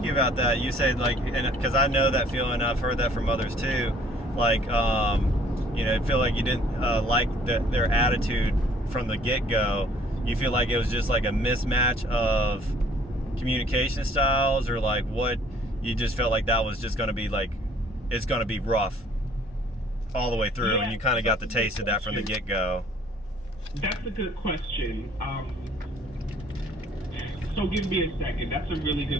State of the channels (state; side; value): normal; both; correlation 0.58